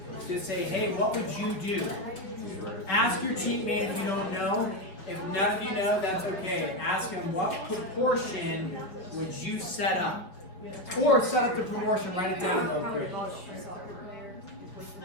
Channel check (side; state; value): right; late; 5.5 ms